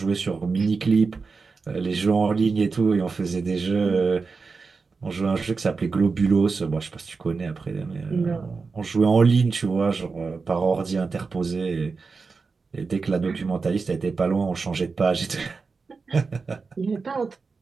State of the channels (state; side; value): quieter; left; 4.6 dB